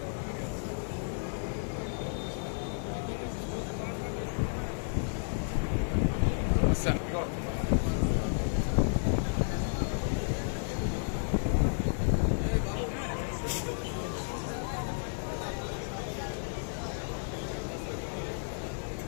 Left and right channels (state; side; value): silent; right; digital silence